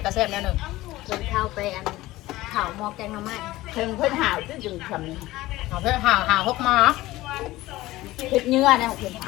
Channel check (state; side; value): quieter; right; 17.6 dB